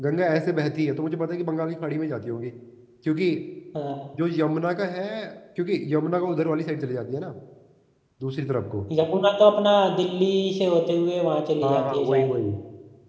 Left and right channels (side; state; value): both; identical; correlation 1.00